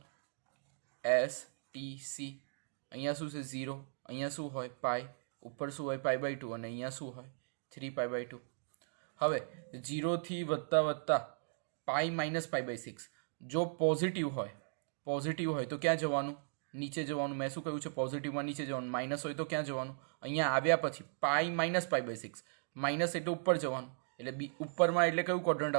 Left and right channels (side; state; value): left; silent; digital silence